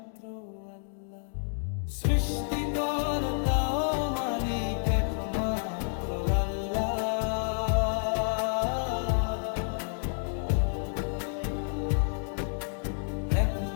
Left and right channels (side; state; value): right; silent; digital silence